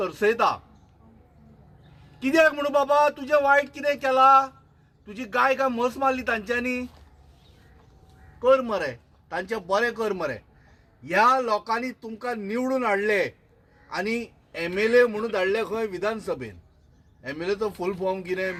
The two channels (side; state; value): both; identical; correlation 1.00